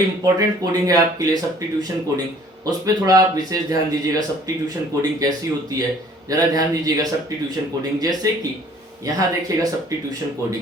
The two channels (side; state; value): both; normal; correlation 0.55